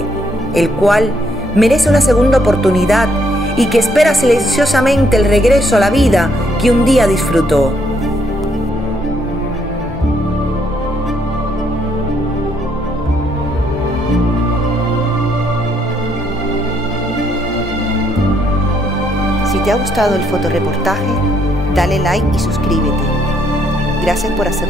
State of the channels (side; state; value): both; normal; correlation 0.72